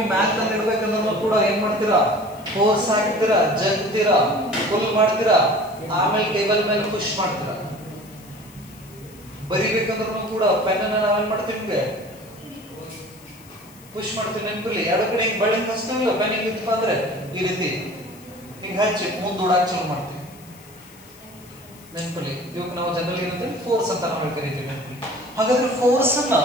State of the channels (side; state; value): left; noise; hiss, 24 dB below the sound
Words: ಮ್ಯಾಥ್ ತಂದು ಇಡ್ಬೇಕಂದ್ರೂ ಕೂಡ ಏನ್ ಮಾಡ್ತೀರಾ? ಫೋರ್ಸ್ ಹಾಕ್ತೀರಾ, ಜಗ್ತೀರಾ, ಫುಲ್ ಮಾಡ್ತೀರಾ, ಆಮೇಲೆ ಟೇಬಲ್ ಮೇಲೆ ಪುಷ್ ಮಾಡ್ತೀರಾ. ಬರಿಬೇಕಂದ್ರೂ ಕೂಡ ಪೆನ್ ಅನ್ನ ನಾವೇನ್ ಮಾಡ್ತೀವಿ? ಪುಷ್ ಮಾಡ್ತೀವಿ. ನೆನಪಿರ್ಲಿ, ಎರಡು ಕಡೆ ಹಿಂಗ್ ಬಳ್ಳಿ ಹಚ್ತೀವಿಲ್ಲ, ಪೆನ್ ಹಿಂಗಿತ್ತಪ್ಪ ಅಂದ್ರೆ ಈ ರೀತಿ ಹಿಂಗ್ ಹಚ್ಚಿ ಮುಂದೂಡಾಕ್ ಚಾಲು ಮಾಡ್ತೀವಿ. ನೆನಪಿರ್ಲಿ, ಇವಾಗ ನಾವು ಜನರಲ್ ಏನಂತೀವಿ? ಫೋರ್ಸ್ ಅಂತ ನಾವು ಕರಿತೀವಿ. ನೆನಪಿರ್ಲಿ. ಹಾಗಾದ್ರೆ ಫೋರ್ಸ್ ಅನ್ನ